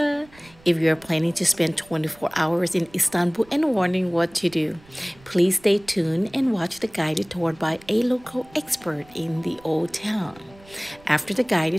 If you're planning to spend 24 hours in Istanbul and wondering what to do, please stay tuned and watch the guided tour by a local expert in the old town. After the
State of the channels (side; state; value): right; noise; rumble, 26 dB below the sound